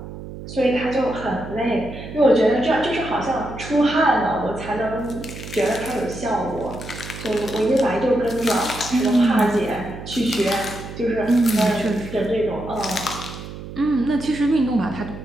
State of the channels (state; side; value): noise; right; hum, 12 dB below the sound